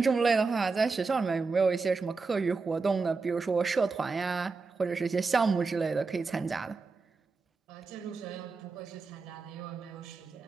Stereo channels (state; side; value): quieter; left; 4.3 dB